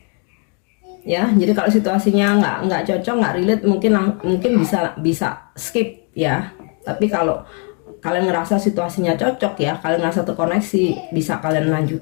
ya. Jadi kalau situasinya nggak cocok, nggak relate, mungkin bisa skip ya. Tapi kalau kalian ngerasa situasinya cocok ya, kalian ngerasa terkoneksi, bisa kalian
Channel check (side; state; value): right; quieter; 38.5 dB